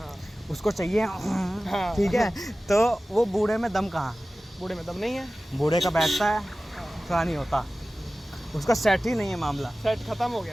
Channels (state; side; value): normal; both; correlation 0.96